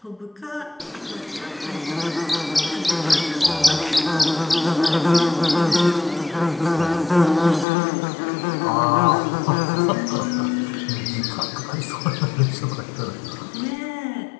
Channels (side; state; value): right; drops out; at 7.7 s